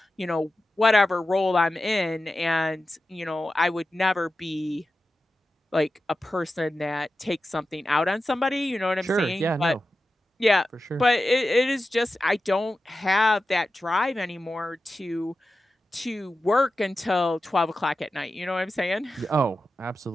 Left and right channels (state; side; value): normal; both; correlation 0.92